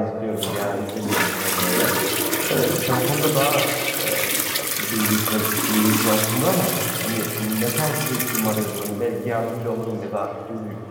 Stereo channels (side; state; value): both; identical; correlation 1.00